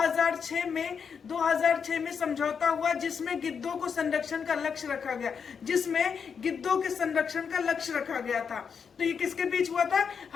में समझौता हुआ, जिसमें गिद्धों को संरक्षण का लक्ष्य रखा गया, था। तो ये किसके बीच हुआ था?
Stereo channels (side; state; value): right; quieter; 6.5 dB